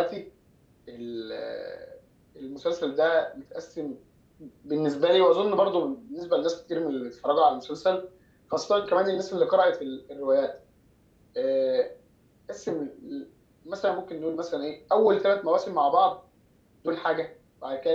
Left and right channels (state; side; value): identical; both; correlation 1.00